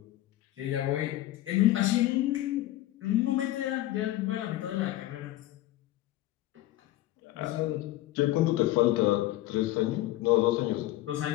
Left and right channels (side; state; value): right; quieter; 15.5 dB